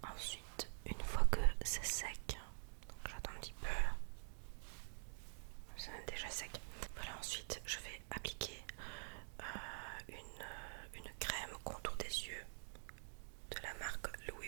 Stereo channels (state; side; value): silent; left; digital silence